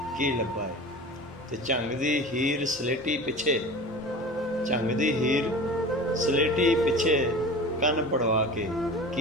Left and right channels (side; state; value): both; normal; correlation 0.35